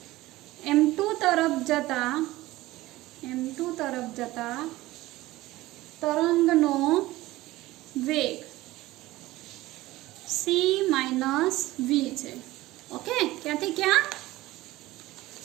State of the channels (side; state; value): left; quieter; 17.8 dB